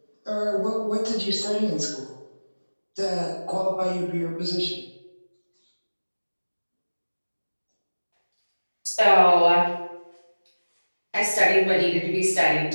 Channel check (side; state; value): both; inverted; correlation -1.00